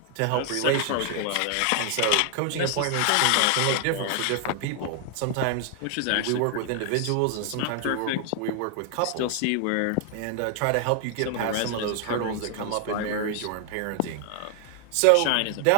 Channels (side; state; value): both; different; correlation 0.00